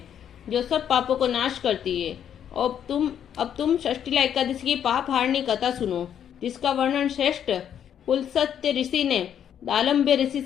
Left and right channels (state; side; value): quieter; right; 9.2 dB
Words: जो सब पापों को नाश करती है। अब तुम षष्ठीला एकादशी की पाप हारनी कथा सुनो, जिसका वर्णन श्रेष्ठ पुलस्त्य ऋषि ने दालम्ब्य ऋषि